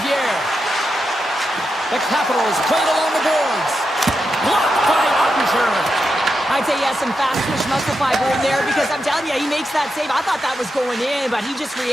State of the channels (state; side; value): normal; both; correlation 0.87